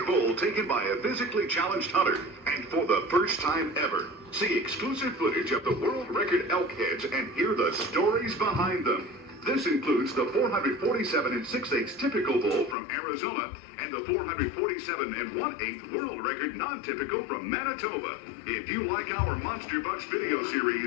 bull taken by a physically challenged hunter. And for the first time ever, see exclusive footage of the world record elk heads and hear the stories behind them. This includes the 447 6/8 typical bull from Arizona and the 447 1/8 world record non-typical from Manitoba. If you like our Monster Bucks video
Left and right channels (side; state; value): right; drops out; at 12.8 s